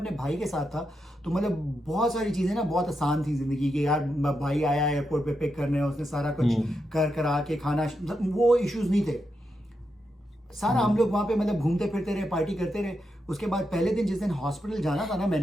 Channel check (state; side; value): normal; both; correlation 0.85